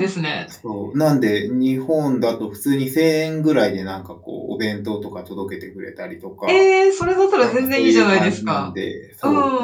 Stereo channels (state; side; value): identical; both; correlation 1.00